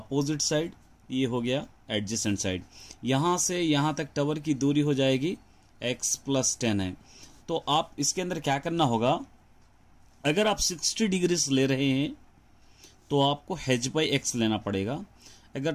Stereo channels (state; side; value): identical; both; correlation 1.00